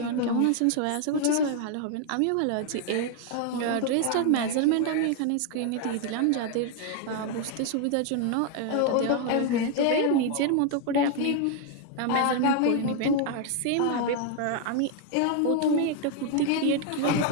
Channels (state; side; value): different; both; correlation 0.00